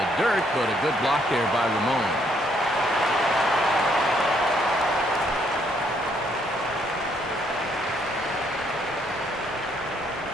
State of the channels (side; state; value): both; normal; correlation 0.70